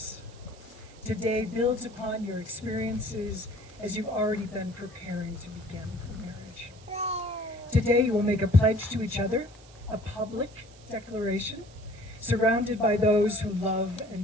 Today builds upon your experiences as you've already been preparing to begin marriage. Today you will make a pledge to each other, a public declaration, surrounded by those who love and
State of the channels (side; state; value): right; noise; hiss, 24 dB below the sound